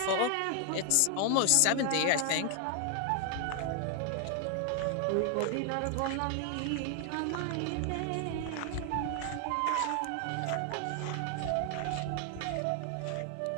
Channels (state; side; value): different; both; correlation 0.00